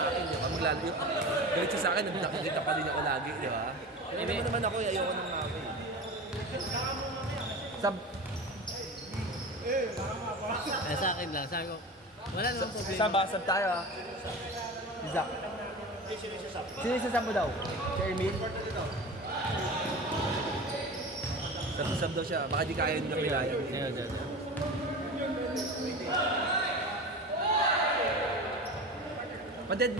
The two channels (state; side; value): normal; both; correlation 0.31